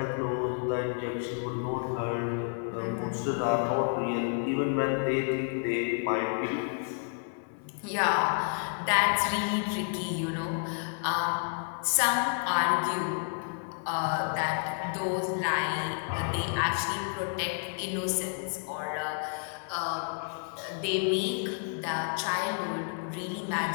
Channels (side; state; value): right; silent; 58 dB below the other